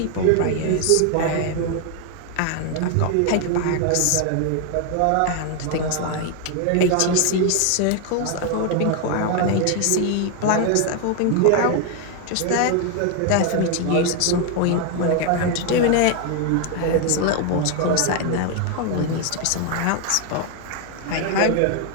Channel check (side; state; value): both; different; correlation 0.01